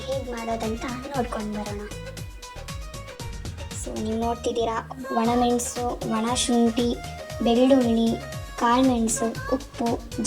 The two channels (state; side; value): identical; both; correlation 1.00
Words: ಹೇಗೆ ಮಾಡೋದಂತ ನೋಡ್ಕೊಂಡು ಬರೋಣ. ಸೊ ನೀವು ನೋಡ್ತಿದ್ದೀರಾ, ಒಣಮೆಣಸು, ಒಣ ಶುಂಠಿ, ಬೆಳ್ಳುಳ್ಳಿ, ಕಾಳುಮೆಣಸು, ಉಪ್ಪು,